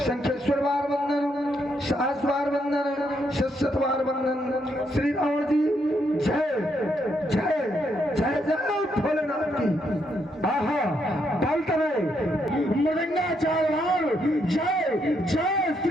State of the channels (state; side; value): normal; both; correlation 0.76